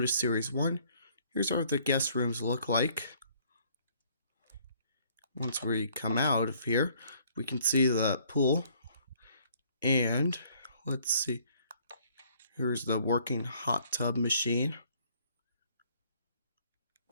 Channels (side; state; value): both; inverted; correlation -0.62